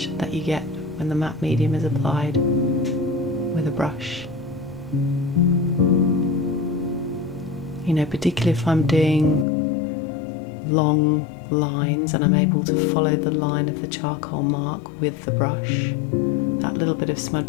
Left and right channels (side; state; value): right; drops out; at 9.5 s